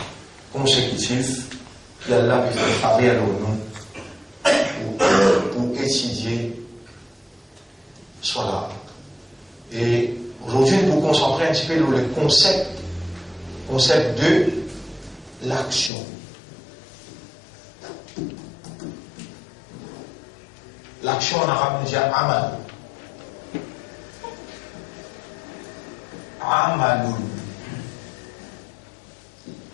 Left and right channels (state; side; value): drops out; right; at 15.9 s